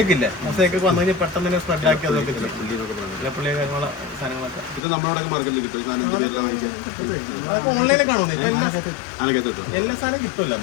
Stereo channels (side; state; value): right; drops out; at 4.8 s